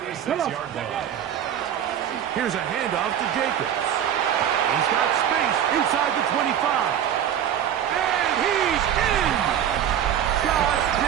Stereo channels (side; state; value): left; quieter; 9.8 dB